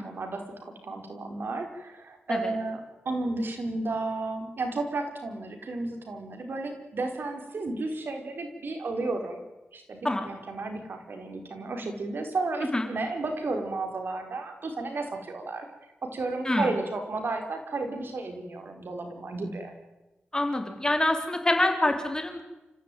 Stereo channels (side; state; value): both; normal; correlation 0.87